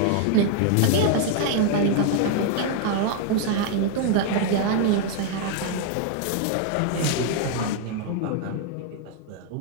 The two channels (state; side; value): different; both; correlation 0.00